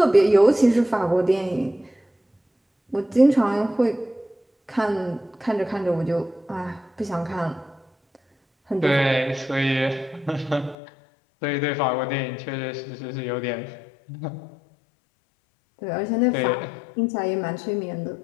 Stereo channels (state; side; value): drops out; right; at 10.8 s